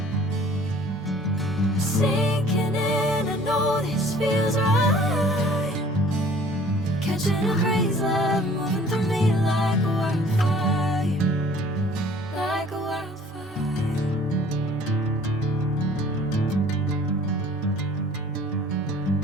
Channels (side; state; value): both; normal; correlation 0.52